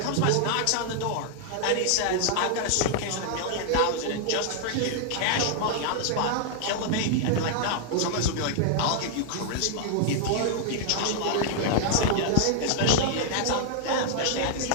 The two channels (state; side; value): different; both; correlation 0.00